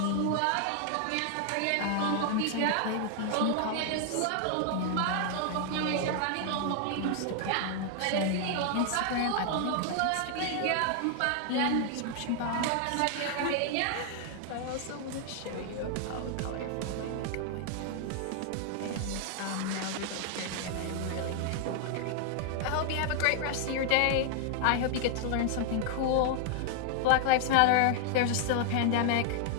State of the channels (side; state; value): both; different; correlation 0.00